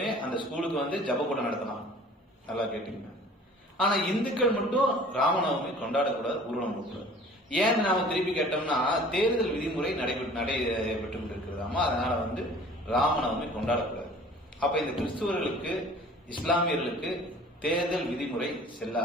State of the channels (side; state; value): both; normal; correlation 0.48